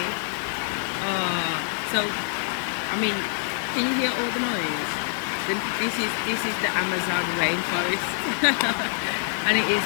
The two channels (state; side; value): silent; right; digital silence